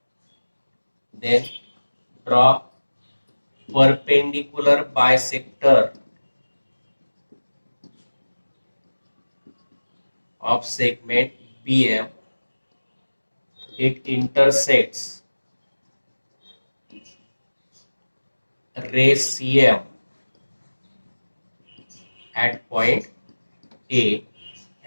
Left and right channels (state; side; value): inverted; both; correlation -1.00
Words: then draw perpendicular bisector of segment BM. It intersects ray CM at point A,